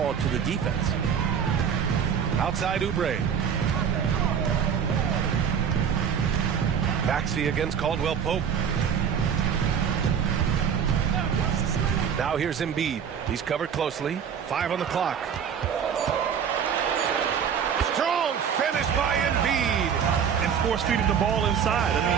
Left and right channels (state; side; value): quieter; left; 7.7 dB